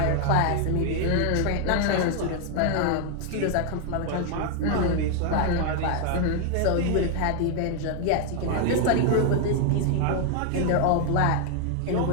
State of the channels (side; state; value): both; different; correlation 0.00